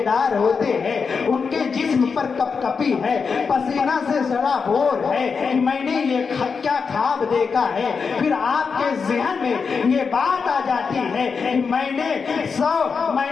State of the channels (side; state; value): right; quieter; 5.4 dB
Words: ہوتے ہیں ان کے جسم پر کپ کپی ہے، پسینہ سے سڑا بور ہے کہ میں نے یہ کیا خواب دیکھا ہے۔ پھر آپ کے ذہن میں یہ بات آ جاتی ہے کہ میں نے